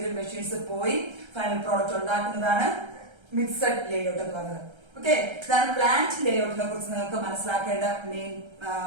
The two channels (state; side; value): late; left; 1.3 ms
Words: മെഷീൻസ് പോയി ഫൈനൽ പ്രോഡക്റ്റ് ഉണ്ടാക്കുന്നതാണ് മിക്സഡ് ലേഔട്ട് എന്ന് പറയുന്നത്. ഓക്കെ, ഇതാണ് പ്ലാന്റ് ലേഔട്ടിനെ കുറിച്ച് നിങ്ങൾക്ക് മനസ്സിലാക്കേണ്ട മെയിൻ